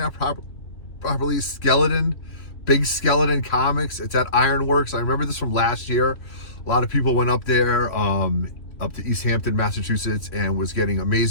properly, Big Skeleton Comics. It's at Ironworks. I remember this from last year. A lot of people went up there, up to East Hampton, Massachusetts, and was getting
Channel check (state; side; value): late; right; 3.0 ms